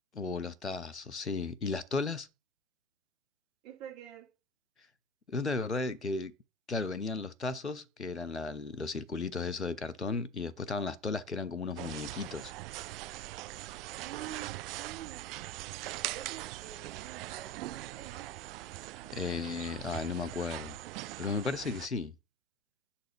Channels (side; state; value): both; normal; correlation 0.34